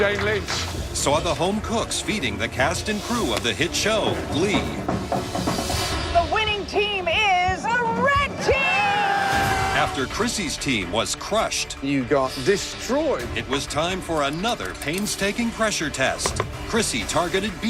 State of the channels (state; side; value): identical; both; correlation 1.00